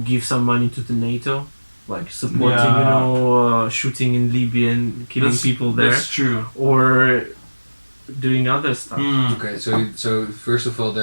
give some money to the NATO, like supporting, you know, shooting in Libya and killing people there. That's true. Or doing other stuff. Okay, so first of all,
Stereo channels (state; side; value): inverted; both; correlation -1.00